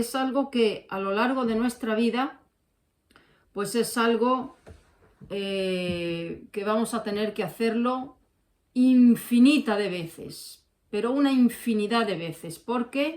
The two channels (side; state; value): both; identical; correlation 1.00